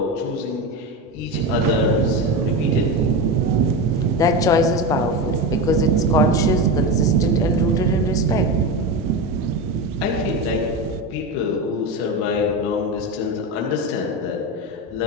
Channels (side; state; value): both; normal; correlation 0.19